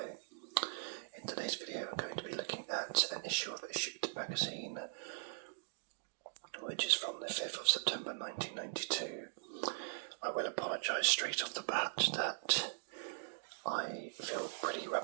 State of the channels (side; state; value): left; silent; digital silence